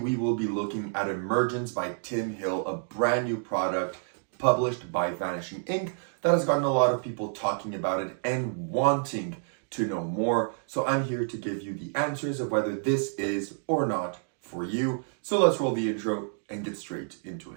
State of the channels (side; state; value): left; silent; digital silence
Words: will be looking at Emergence by Tim Hill, a brand new product published by Vanishing Ink that has gotten a lot of people talking about it and wanting to know more. So I'm here to give you the answers of whether this is or not for you. So let's roll the intro and get straight into